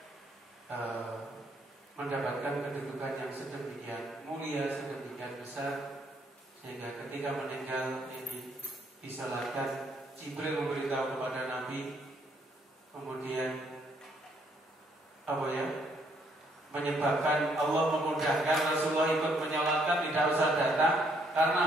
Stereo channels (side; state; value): both; normal; correlation 0.70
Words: mendapatkan kedudukan yang sedemikian mulia, sedemikian besar, sehingga ketika meninggal ini disalatkan, Jibril memberitahu kepada Nabi, kemudian menyebabkan Allah memudahkan Rasulullah ikut menyolatkan, tidak usah datang.